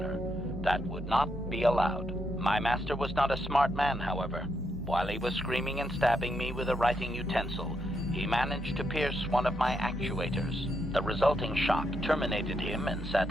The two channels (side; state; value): both; normal; correlation 0.80